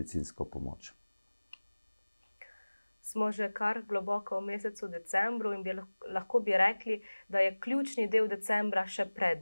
pomoč. Smo že kar globoko v mesecu decembru in lahko bi rekli, da je ključni del decembra še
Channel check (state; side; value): inverted; both; correlation -1.00